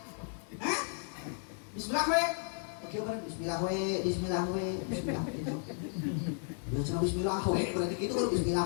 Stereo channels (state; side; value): silent; right; 55 dB below the other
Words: hah bismillah we oke bener bismillah we itu ya cenah bismillah we berarti kitu kudu bismillah